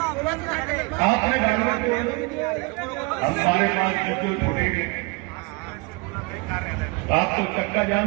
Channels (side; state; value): left; quieter; 27.4 dB